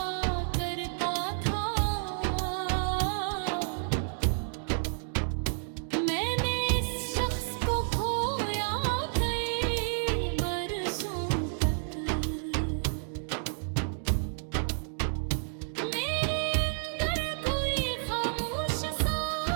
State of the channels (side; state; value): left; silent; digital silence